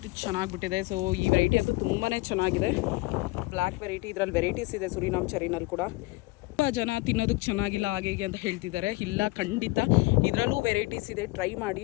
ಚೆನ್ನಾಗಿ ಬಿಟ್ಟಿದೆ. ಸೊ ಈ ವೆರೈಟಿ ಅಂತೂ ತುಂಬಾ ಚೆನ್ನಾಗಿದೆ. Black variety. ಇದರಲ್ಲಿ ವೆರೈಟೀಸ್ ಇದೆ ಸುರಿನಾಮ್ ಚೆರಿನಲ್ಲಿ ಕೂಡ. ತುಂಬ ಜನ ತಿನ್ನೋದಕ್ಕೆ ಚೆನ್ನಾಗಿಲ್ಲ ಹಾಗೆ ಹೀಗೆ ಅಂತ ಹೇಳ್ತಿದ್ದಾರೆ. ಇಲ್ಲ, ಖಂಡಿತ ಇದರಲ್ಲೂ ವೆರೈಟೀಸ್ ಇದೆ. ಟ್ರೈ ಮಾಡಿ,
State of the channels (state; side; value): quieter; right; 22.4 dB